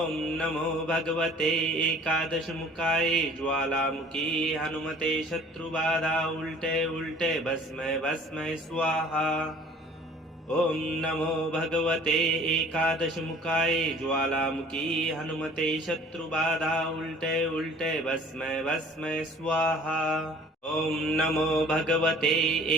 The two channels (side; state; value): both; normal; correlation 0.50